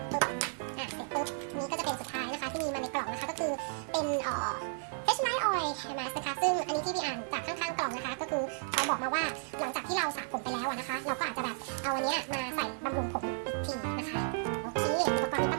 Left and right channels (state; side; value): silent; left; 56 dB below the other